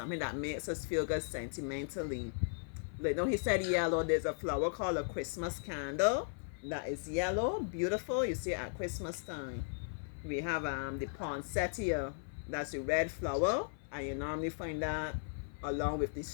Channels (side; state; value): right; silent; 53 dB below the other